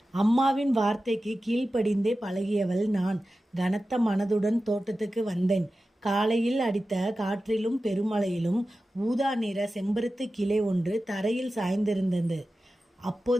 அம்மாவின் வார்த்தைக்கு கீழ்ப்படிந்தே பழகியவள் நான் கனத்த மனதுடன் தோட்டத்துக்கு வந்தேன். காலையில் அடித்த காற்றிலும் பெருமழையிலும் ஊதா நிற செம்பருத்து கிளை ஒன்று தரையில் சாய்ந்திருந்தது.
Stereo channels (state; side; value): normal; both; correlation 0.94